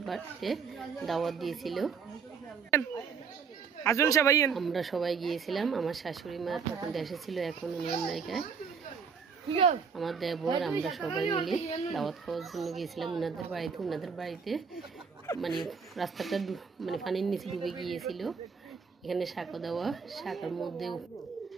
বাড়িতে দাওয়াত দিয়েছিল। আমরা সবাই গিয়েছিলাম। আমার শাশুড়ি মা তখন দেশে ছিল, এখন উনি আমেরিকায়। আমার দেবর আমরা সবাই মিলে দাওয়াত খাওয়ার জন্য গিয়েছিলাম ওনাদের বাড়িতে মানে রাস্তাটা মানে পানির নিচে ডুবে গিয়েছিল। এখানে সাঁকো দেওয়া,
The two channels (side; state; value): left; quieter; 5.9 dB